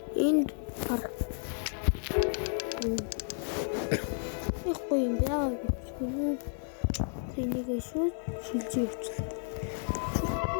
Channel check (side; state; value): right; silent; 56 dB below the other